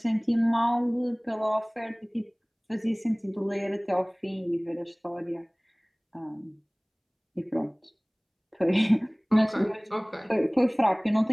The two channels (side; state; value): both; identical; correlation 1.00